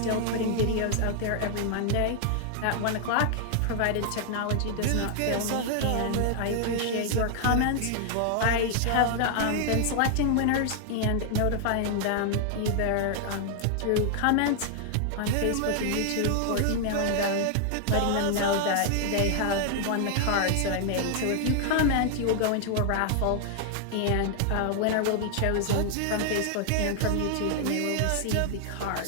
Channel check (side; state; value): both; different; correlation 0.00